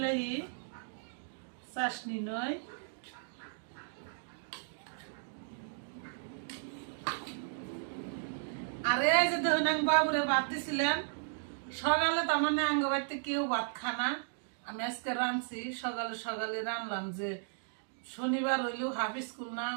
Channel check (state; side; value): silent; left; digital silence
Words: চাশনি নই, আর এই যে দেখুন আমি বাবুরে ভাত দিছিলাম সকালে। তার মানে আঙ্গ বাড়িতে কেউ ভাত খানা, আমি আজকে রাঁধছি। সকালে সকালে রানলাম যে শনিবার হইলেও হাফ স্কুল না,